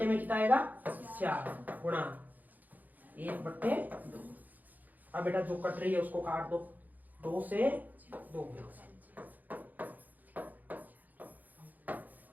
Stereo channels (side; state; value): left; late; 0.083 ms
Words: में कितना आएगा 4 गुणा 1/2। अब बेटा जो कट रही है उसको काट दो, 2 से 2